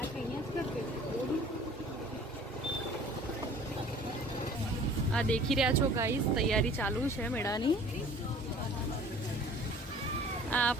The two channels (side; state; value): both; normal; correlation 0.49